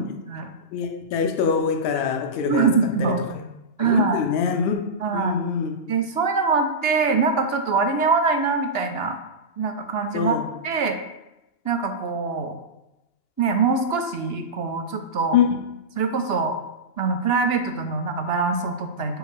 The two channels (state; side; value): late; right; 2.8 ms